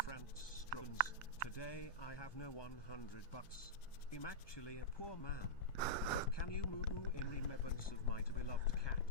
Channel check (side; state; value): right; late; 1.2 ms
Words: Franz Struns. Today I have no $100. I'm actually a poor man. But can you moo in remembrance of my beloved